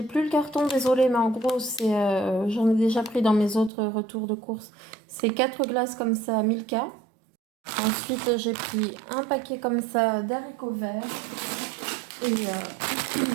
plus le carton, désolé, mais en gros c'est j'en ai déjà pris dans mes autres retours de course. C'est 4 glaces comme ça, Milka. Ensuite j'ai pris un paquet comme ça d'haricots verts et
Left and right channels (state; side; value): drops out; left; at 3.7 s